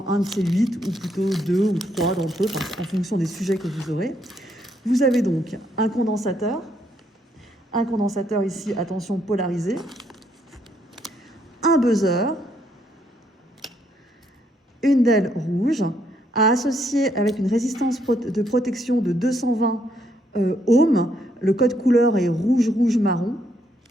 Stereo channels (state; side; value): normal; both; correlation 0.73